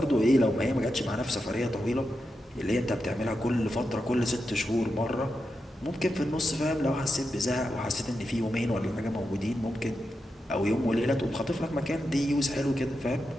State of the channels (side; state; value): both; normal; correlation 0.88